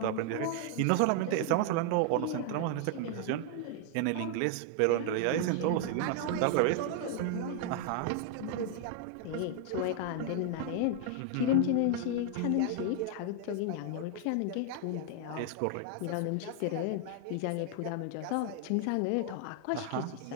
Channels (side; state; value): both; different; correlation 0.00